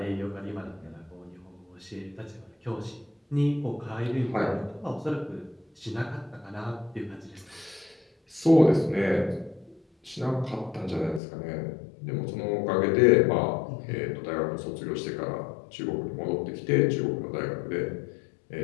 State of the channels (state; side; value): drops out; right; at 11.2 s